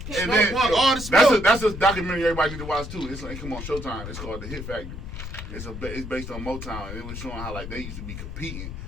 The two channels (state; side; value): noise; left; rumble, 9 dB below the sound